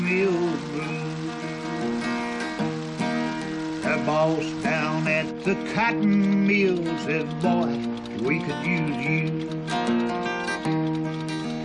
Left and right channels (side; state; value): both; identical; correlation 1.00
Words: mill blues. The boss down at the cotton mill says, boy, we could use you.